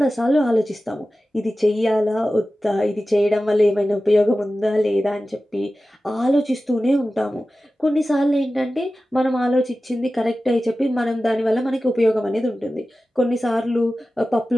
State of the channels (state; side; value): normal; both; correlation 0.95